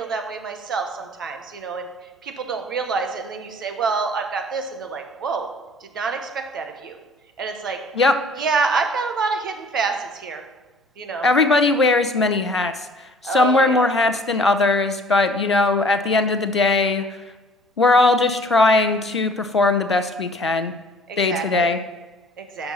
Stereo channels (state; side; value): normal; both; correlation 0.52